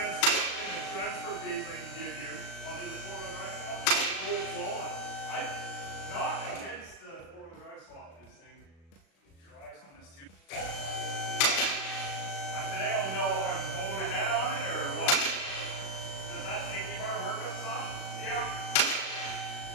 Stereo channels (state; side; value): late; right; 36 ms